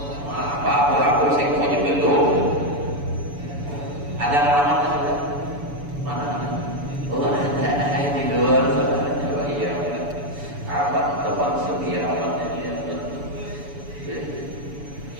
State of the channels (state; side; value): late; left; 7.0 ms